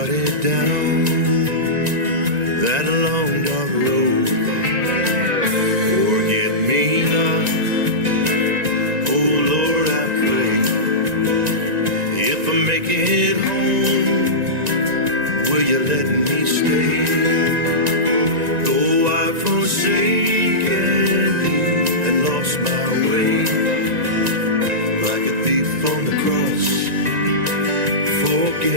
down that long dark road. Forget me not, oh Lord, I pray. If I make it home, will you let me stay? Though I've forsaken thee and lost my way, like a thief on the cross,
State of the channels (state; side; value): late; left; 1.9 ms